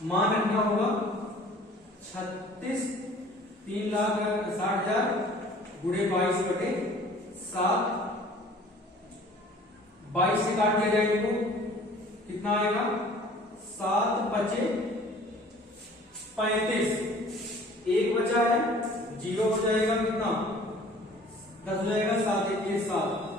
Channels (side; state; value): both; normal; correlation 0.50